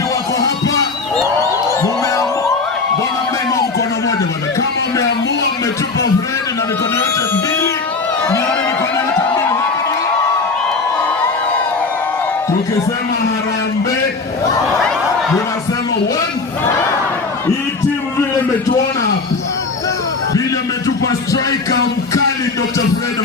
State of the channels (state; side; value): quieter; right; 4.0 dB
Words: wako hapa? Mbona mnainua mkono moja bwana? Kama mmeamua mmetupa Fred na mikono yote mbili, nione mikono yote mbili hapa. Tukisema harambee, tunasema one. Hii timu vile mmetuona hapa, vile mmetupa striker mkali Dr. Fred